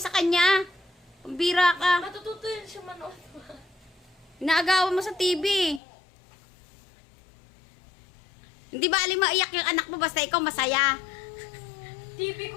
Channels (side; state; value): right; drops out; at 5.8 s